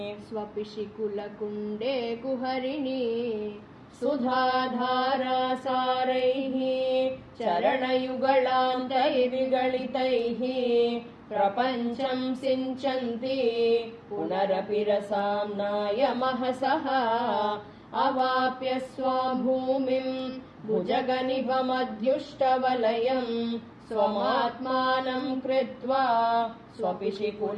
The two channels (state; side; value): identical; both; correlation 1.00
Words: स्वपिशि कुलकुण्डे कुहरिणी सुधाधारासारैः चरणयुगलान्तैर्विगलितैः प्रपञ्चं सिञ्चन्ति पुनरपि रसाम्नाय महसः अवाप्य स्वां भूमिम् भुजगनिभमध्युष्टवलयम् स्वमात्मानं कृत्वा स्वपिशि